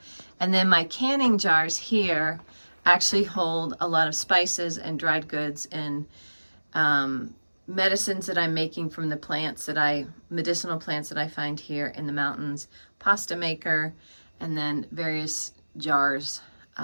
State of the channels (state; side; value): inverted; both; correlation -1.00